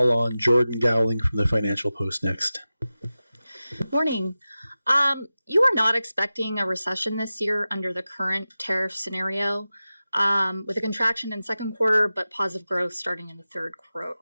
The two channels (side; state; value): both; inverted; correlation -0.95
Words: on Jordan Gowling from the Financial Post next. Morning. You are not expecting a recession this year under the current tariff scenario, with a contraction in second quarter, but positive growth starting in the third